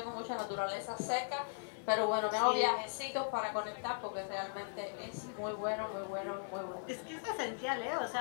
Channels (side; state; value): right; silent; digital silence